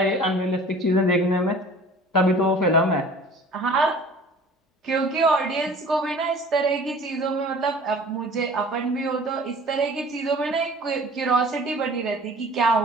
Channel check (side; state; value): both; normal; correlation 0.46